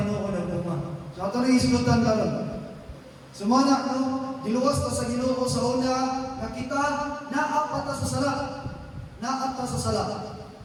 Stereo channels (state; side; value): identical; both; correlation 1.00